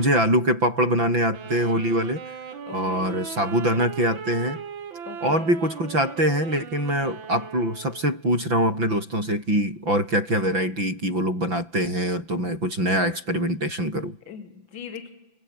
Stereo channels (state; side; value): late; left; 5.9 ms